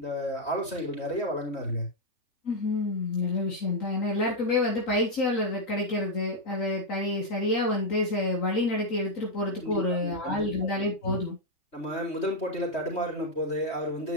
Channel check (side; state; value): right; late; 3.1 ms